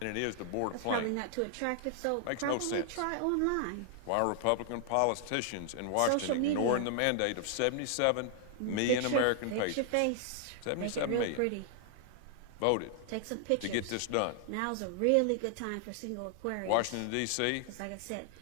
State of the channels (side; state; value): both; different; correlation 0.00